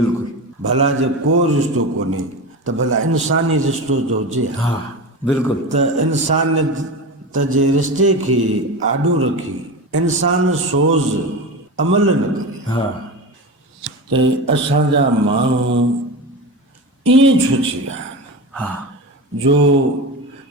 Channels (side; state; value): both; normal; correlation 0.25